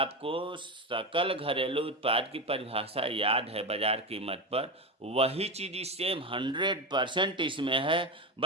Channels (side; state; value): both; normal; correlation 0.18